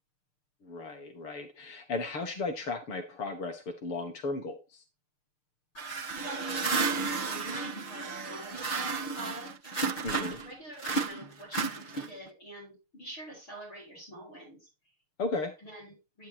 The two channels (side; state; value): right; late; 6.6 ms